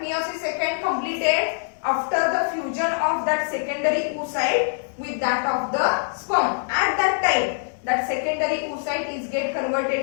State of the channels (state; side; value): silent; right; digital silence